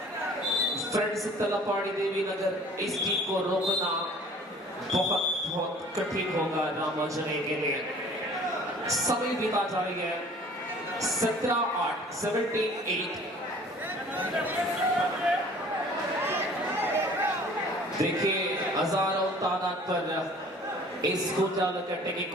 फ्रेंड्स तलपाड़ी देवी नगर इस टीम को रोकना बहुत बहुत कठिन होगा रामाजने के लिए. समय बीता जा रही है. 17-8 17-8 देखिए हजारों तादाद पर इस गोजाल कट्टे के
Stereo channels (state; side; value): normal; both; correlation 0.50